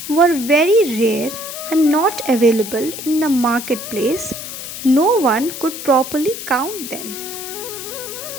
were very rare and not available in the marketplace, no one could properly count them.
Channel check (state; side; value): noise; left; hiss, 9 dB below the sound